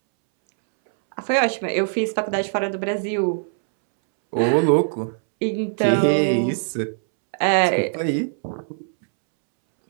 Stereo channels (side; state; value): left; silent; 65 dB below the other